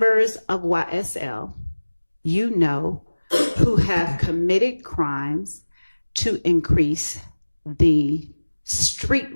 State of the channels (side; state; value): both; inverted; correlation -1.00